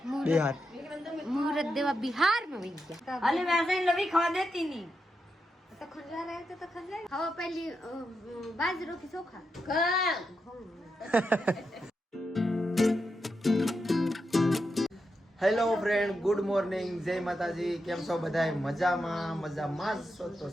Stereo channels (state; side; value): normal; both; correlation 0.86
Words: બિહાર, મુહૂર્ત દેવા બિહારમાં વહી ગયા. અલે વैसे लवी खवा देती नहीं તો ખંજવા રહે તો ખંજવા. હવે પહેલી બાજરો કે ચોખા. હેલો ફ્રેન્ડ, ગુડ મોર્નિંગ, જય માતાજી. કેમ છો બધા? મજામાં જ છો? તો